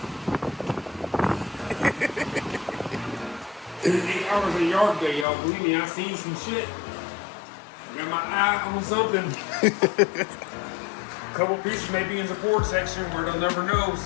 8 hours of yard day, y'all. Believe me, I seen some shit. Got my eye on something. A couple pieces may be in the Ford section where they'll never know,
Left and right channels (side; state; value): right; drops out; at 5.2 s